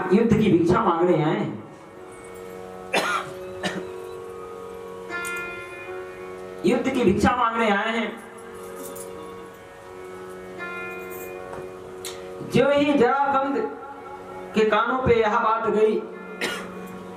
युद्ध की भिक्षा मांगने आए हैं। युद्ध की भिक्षा मांगने आए हैं। जो ही जरासंध के कानों पे यह बात गई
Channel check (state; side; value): identical; both; correlation 1.00